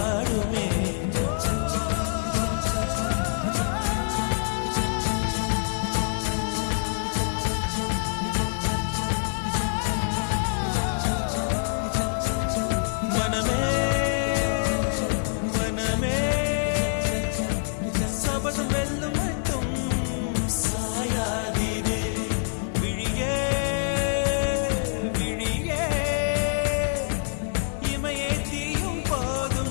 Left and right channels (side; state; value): right; silent; digital silence